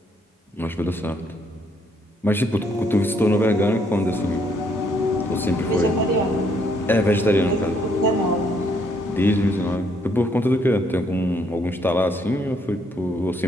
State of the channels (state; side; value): normal; both; correlation 0.70